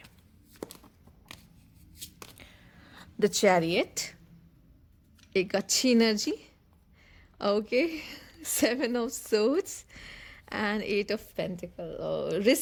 the chariot, एक अच्छी energy. Okay, 7 of Swords and 8 of Pentacles. Oh,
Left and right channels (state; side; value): identical; both; correlation 1.00